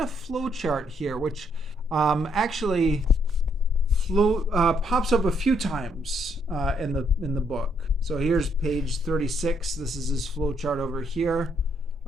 a flow chart here, which actually pops up a few times in the book. So here's page 36. This is his flow chart over here.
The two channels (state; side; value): normal; both; correlation 0.72